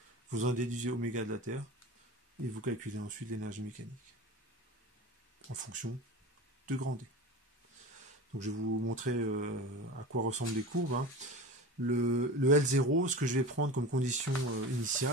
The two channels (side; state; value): both; normal; correlation 0.31